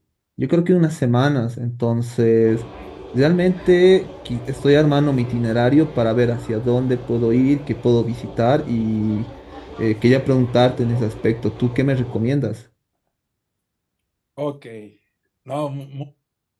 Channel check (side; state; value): both; identical; correlation 1.00